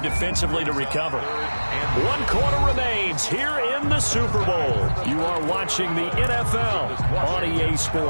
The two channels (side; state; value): both; inverted; correlation -1.00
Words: defensively to recover. 1 quarter remains here in the Super Bowl. You are watching the NFL on EA